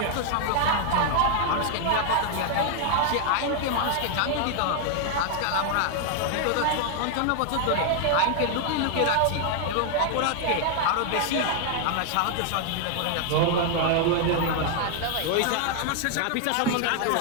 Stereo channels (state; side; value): different; both; correlation 0.00